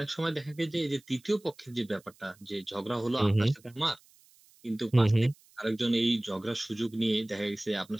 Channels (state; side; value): noise; right; hiss, 29 dB below the sound